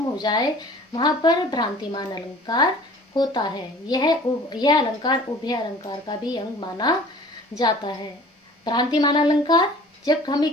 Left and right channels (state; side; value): normal; both; correlation 0.47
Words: हो जाए, वहां पर भ्रांतिमान अलंकार होता है। यह अलंकार उभय अलंकार का भी अंग माना जाता है। भ्रांतिमान अलंकार, जब हमें